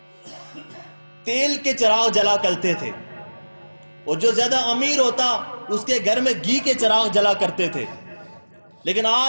تیل کے چراغ جلا کرتے تھے، اور جو زیادہ امیر ہوتا اس کے گھر میں گھی کے چراغ جلا کرتے تھے، لیکن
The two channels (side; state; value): both; inverted; correlation -1.00